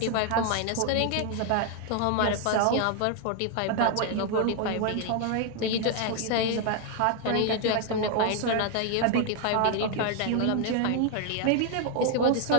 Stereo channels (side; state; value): both; different; correlation 0.00